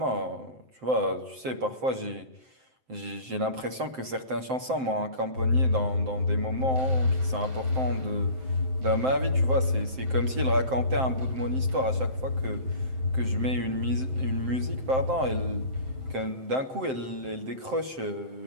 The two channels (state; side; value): late; left; 7.7 ms